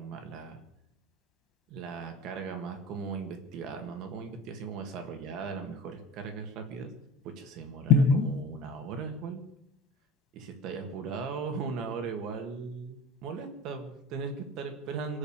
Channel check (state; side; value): normal; both; correlation 0.35